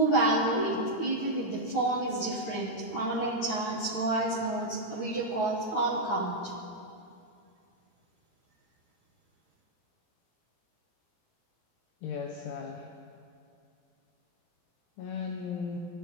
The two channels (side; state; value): right; late; 17 ms